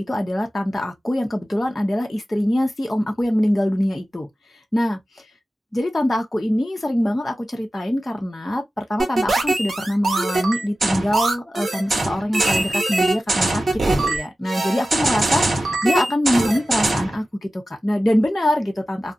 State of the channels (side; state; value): both; normal; correlation 0.95